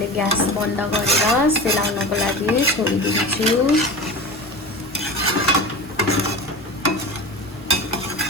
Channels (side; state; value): both; normal; correlation 0.31